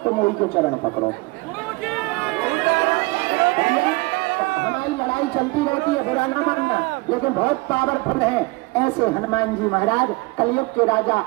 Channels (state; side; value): quieter; left; 24.8 dB